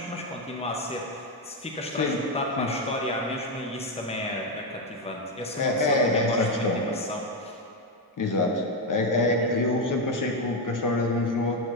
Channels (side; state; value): both; normal; correlation 0.07